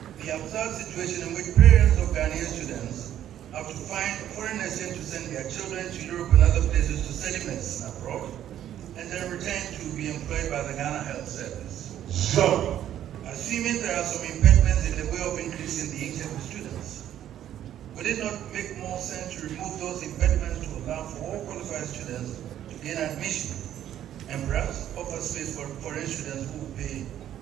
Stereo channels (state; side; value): quieter; left; 11.2 dB